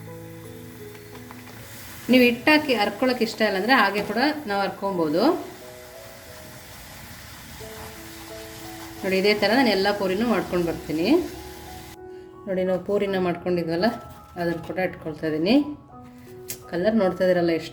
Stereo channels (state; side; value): identical; both; correlation 1.00